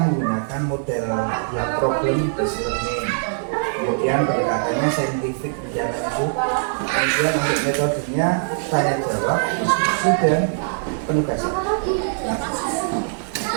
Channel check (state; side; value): silent; left; digital silence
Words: menggunakan model problem based learning. Kemudian pendekatannya saintifik bicara itu. Kemudian untuk metodenya tanya jawab, diskusi dan penugasan. Itu